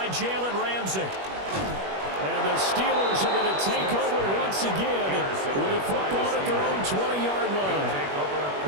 Jalen Ramsey. And the Steelers are going to take over once again with a football at their own 20-yard line.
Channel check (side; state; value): left; late; 21 ms